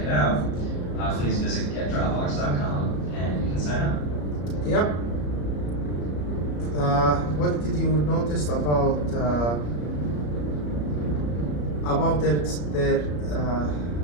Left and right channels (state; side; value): late; right; 34 ms